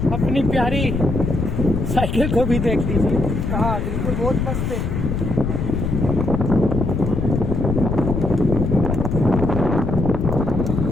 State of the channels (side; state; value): left; noise; rumble, 1 dB below the sound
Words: अपनी प्यारी साइकिल को भी देख लीजिए। हाँ बिल्कुल, बहुत मस्त है।